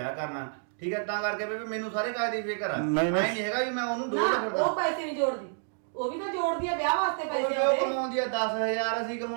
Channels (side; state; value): left; silent; digital silence